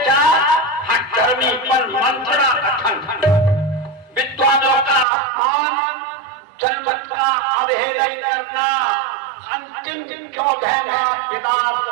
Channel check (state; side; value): drops out; left; at 5.1 s